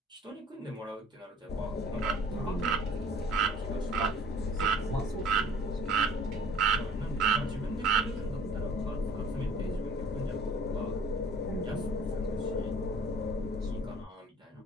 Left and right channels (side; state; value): both; normal; correlation 0.50